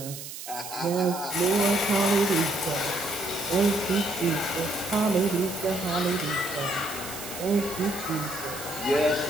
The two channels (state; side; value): noise; right; hiss, 10 dB below the sound